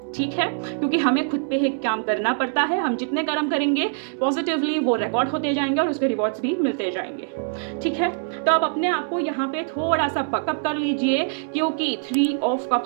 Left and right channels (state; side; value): silent; left; 62 dB below the other